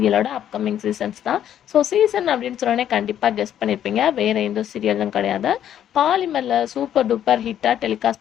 அப்கமிங் சீசன்ஸ் தான். ஸோ சீசன் அப்படின்னு சொன்னோடனே கண்டிப்பாக கெஸ் பண்ணியிருப்பீங்க, வேறு எந்த சீரியலும் கிடையாது. பாலிமரில் சூப்பர் டூப்பர் ஹிட்டாக டெலிகாஸ்ட்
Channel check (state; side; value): quieter; right; 10.4 dB